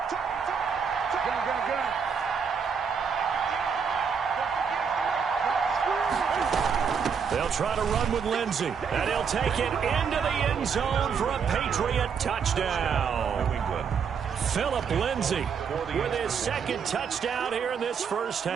They'll try to run with Lindsay, and he'll take it into the end zone for a Patriot touchdown. Philip Lindsay with his second touchdown here in this first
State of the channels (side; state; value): left; quieter; 6.5 dB